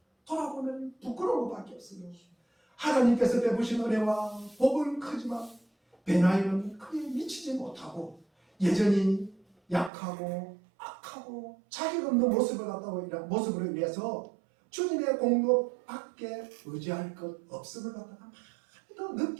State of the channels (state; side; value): drops out; left; at 9.9 s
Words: 돌아보면 부끄러운 것밖에 없어요. 하나님께서 베푸신 은혜와 복은 크지만 변화에는 크게 미치지 못하고 여전히 약하고 악하고 자격 없는 모습으로 인해서 주님의 공로밖에 의지할 것 없음을 갖다가 많이 더